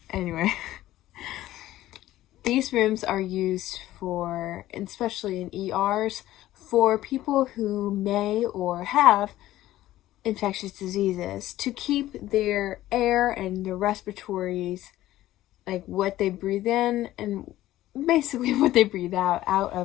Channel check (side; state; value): right; quieter; 14.9 dB